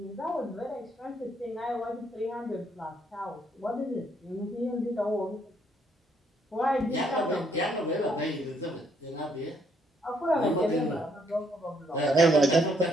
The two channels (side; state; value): both; normal; correlation 0.70